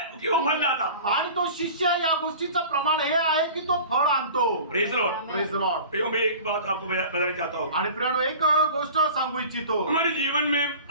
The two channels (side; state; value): both; inverted; correlation -0.41